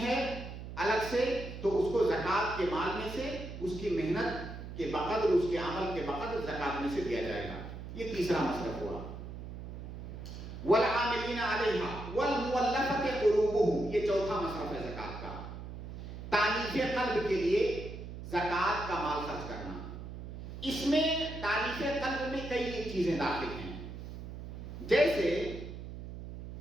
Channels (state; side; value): noise; right; hum, 10 dB below the sound